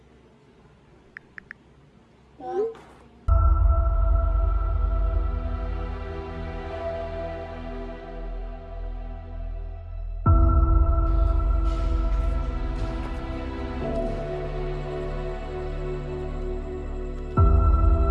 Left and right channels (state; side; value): identical; both; correlation 1.00